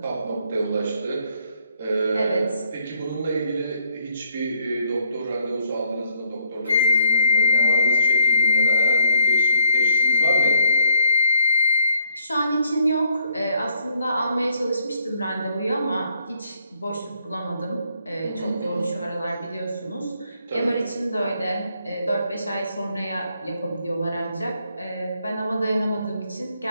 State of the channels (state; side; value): inverted; both; correlation -0.71